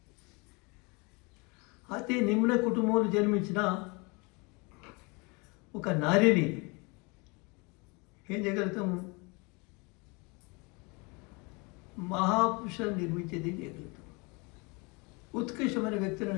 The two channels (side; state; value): right; quieter; 28.9 dB